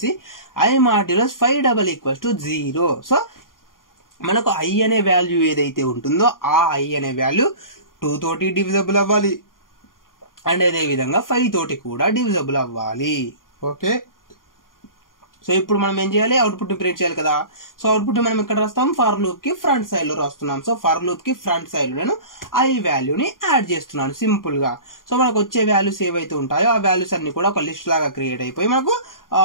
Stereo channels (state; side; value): late; right; 0.90 ms